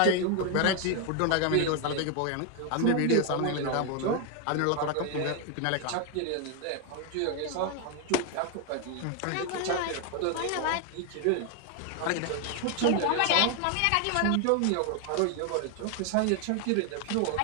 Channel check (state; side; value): different; both; correlation 0.01